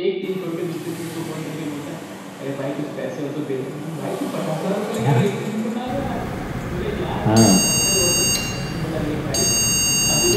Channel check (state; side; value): identical; both; correlation 1.00